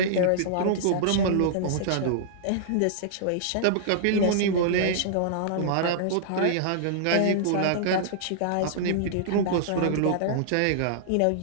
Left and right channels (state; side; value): different; both; correlation -0.02